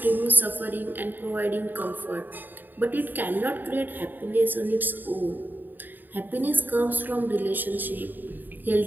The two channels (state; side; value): late; left; 0.090 ms